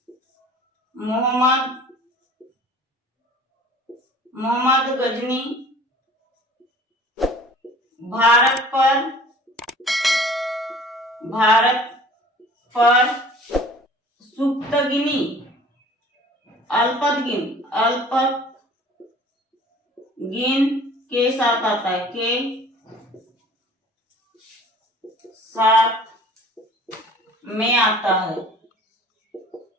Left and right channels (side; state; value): both; normal; correlation 0.48